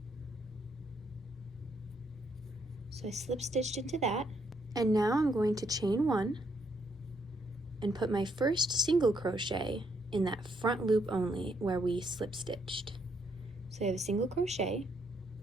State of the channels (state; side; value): normal; both; correlation 0.74